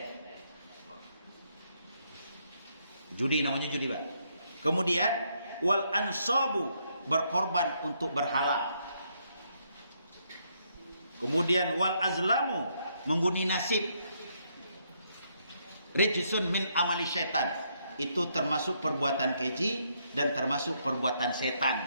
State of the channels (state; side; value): inverted; both; correlation -0.74